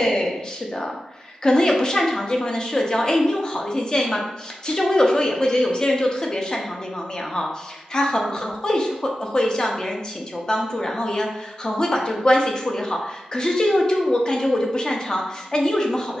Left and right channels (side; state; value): both; normal; correlation 0.93